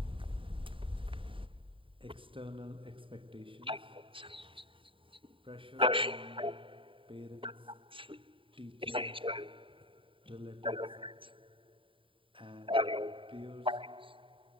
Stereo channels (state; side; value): late; left; 0.25 ms